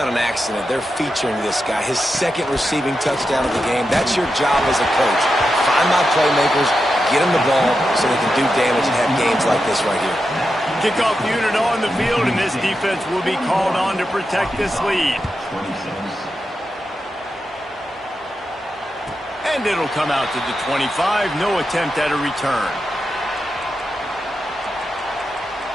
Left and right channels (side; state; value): both; normal; correlation 0.88